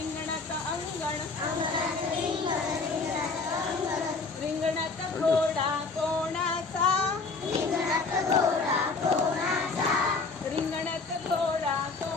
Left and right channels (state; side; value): quieter; right; 4.1 dB